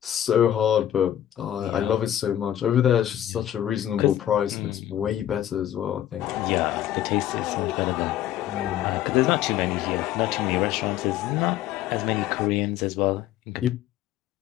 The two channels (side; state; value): right; quieter; 11.7 dB